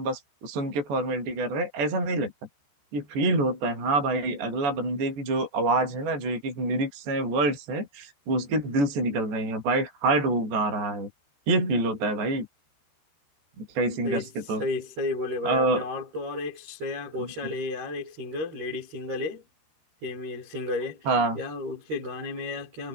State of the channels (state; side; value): late; left; 14 ms